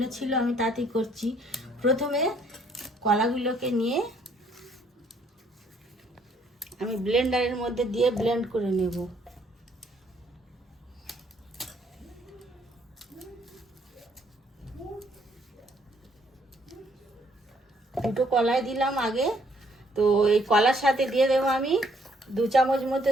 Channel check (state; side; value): normal; both; correlation 0.66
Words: ছিল, আমি তাতেই করছি। প্রথমে কলাগুলোকে নিয়ে আমি ব্লেন্ডারের মধ্যে দিয়ে ব্লেন্ড করে নেব। দুটো কলাই দিলাম আগে। তো এই কলার সাথে দিয়ে দেবো আমি 2 চামচ মতো